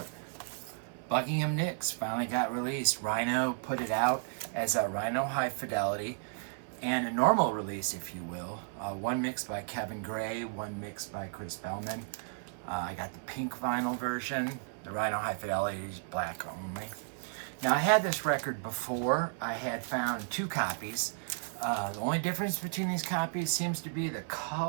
Buckingham Nicks. Finally got released. Rhino put it out as a Rhino High Fidelity and a normal release, if you will. One mixed by Kevin Gray, one mixed by Chris Bellman. I got the pink vinyl version. The Rhino High Fidelity is black only. Now, I had this record before. I had found two copies. The only difference between these copies seems to be the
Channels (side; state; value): left; silent; 55 dB below the other